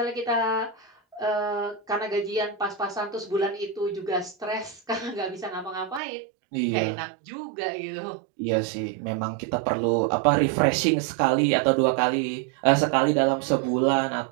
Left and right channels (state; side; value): drops out; left; at 6.0 s